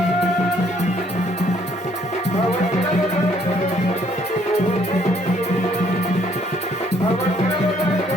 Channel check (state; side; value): normal; both; correlation 0.65